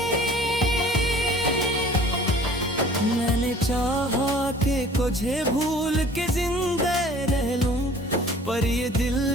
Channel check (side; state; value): both; normal; correlation 0.49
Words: मैंने चाहा कि तुझे भूल के जिंदा रह लूं, पर ये दिल